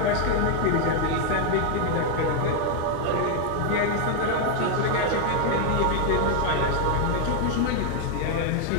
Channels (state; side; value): different; both; correlation 0.00